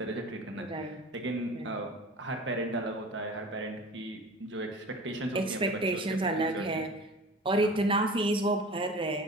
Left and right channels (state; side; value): normal; both; correlation 0.39